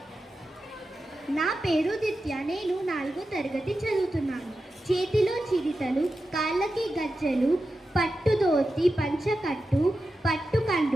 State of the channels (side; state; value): both; normal; correlation 0.91